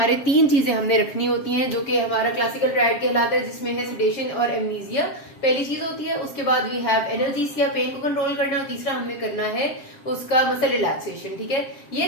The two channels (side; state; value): right; late; 7.5 ms